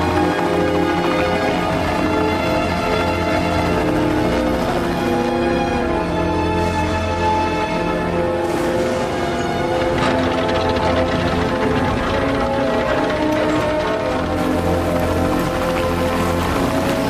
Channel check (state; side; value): identical; both; correlation 1.00